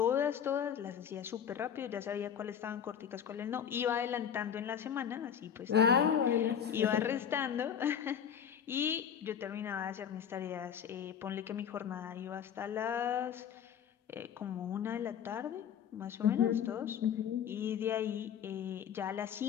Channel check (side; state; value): right; quieter; 8.4 dB